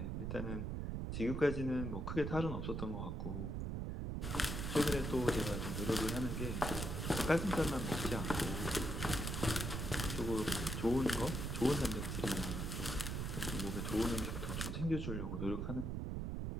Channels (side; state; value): right; noise; rumble, 2 dB below the sound